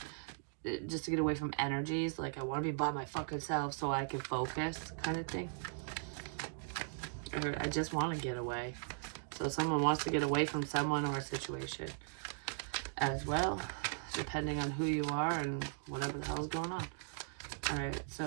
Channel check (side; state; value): left; silent; digital silence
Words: just to get away from energies. Like, I want to be by my fucking self so I can focus, kind of thing. I heard I just want to get away. So someone wants to get away from someone or a situation as well, depending on who you are and whatever the hell's going on. Alright, so